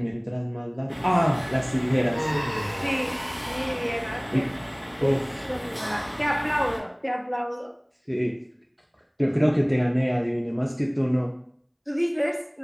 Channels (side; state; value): both; identical; correlation 1.00